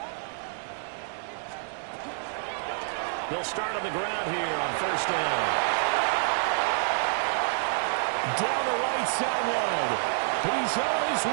They'll start on the ground here on first down. Down the right sideline. He's on his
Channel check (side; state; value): left; silent; digital silence